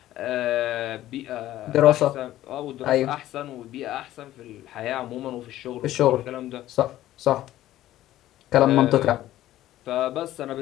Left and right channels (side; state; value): right; quieter; 14.1 dB